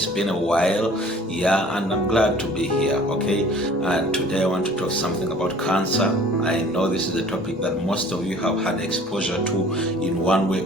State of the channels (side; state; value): both; normal; correlation 0.50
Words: been a while, and I'm glad to be here, okay? And today I want to talk something about cancer. I know this is a topic that most of you have had exposure to in one way